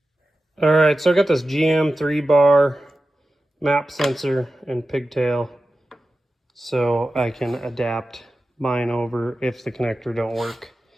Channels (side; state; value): both; normal; correlation 0.93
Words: All right, so I got this GM 3-bar map sensor and pigtail so I can adapt mine over if the connector don't work.